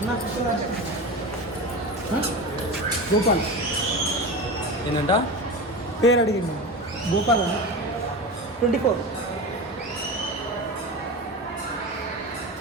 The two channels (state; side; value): normal; both; correlation 0.26